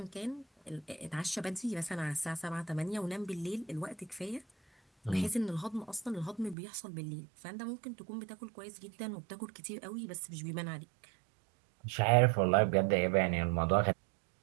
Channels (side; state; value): left; drops out; at 6.6 s